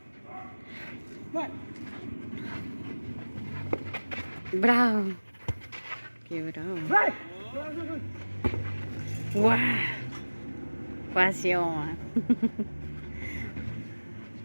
Bravo. Qué bravo. Wow. Pasión.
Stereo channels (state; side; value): inverted; both; correlation -1.00